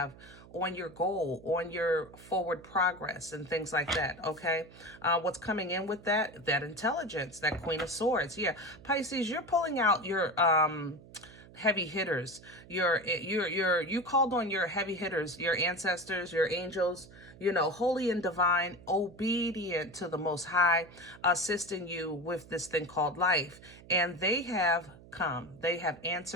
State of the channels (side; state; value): right; noise; hum, 20 dB below the sound